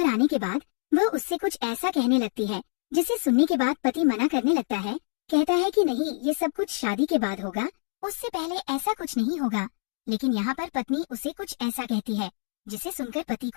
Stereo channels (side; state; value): right; silent; 61 dB below the other